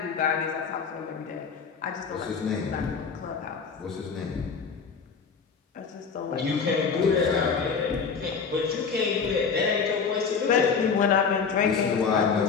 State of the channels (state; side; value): quieter; right; 5.7 dB